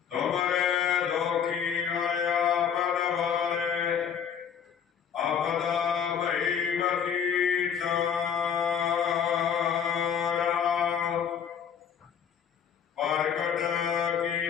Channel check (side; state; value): right; quieter; 7.9 dB